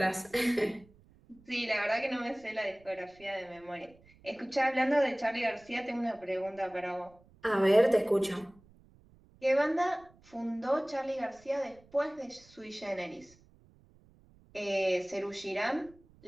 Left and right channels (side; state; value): right; noise; rumble, 27 dB below the sound